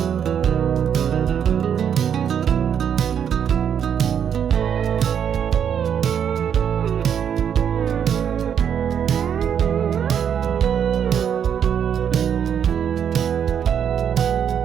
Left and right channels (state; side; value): quieter; left; 8.4 dB